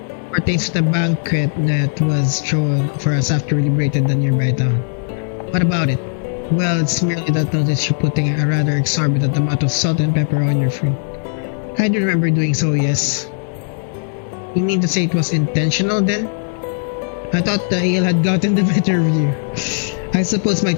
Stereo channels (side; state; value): right; silent; 60 dB below the other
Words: Pertains to the banquet that was thrown for us after we liberated the nearby town. What about it? Well, it's merely that notice you're putting a rather exorbitant amount of salt and pepper on your food. I do remember doing so, yes. You mean to say it was intentional then? I thought the ale had gotten the better of you. I suppose my